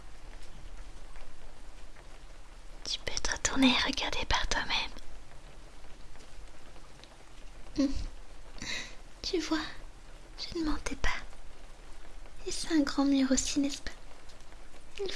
retourner et regarder par toi-même. Tu vois, je ne mentais pas. Et c'est un grand mur aussi, n'est-ce pas? Il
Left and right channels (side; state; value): both; identical; correlation 1.00